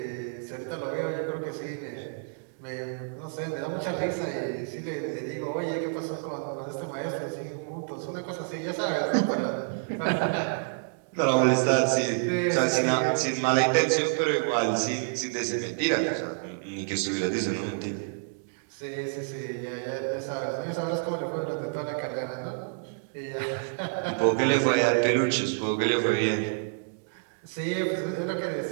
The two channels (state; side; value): silent; left; digital silence